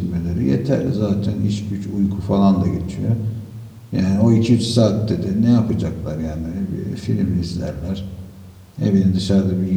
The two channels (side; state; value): both; identical; correlation 1.00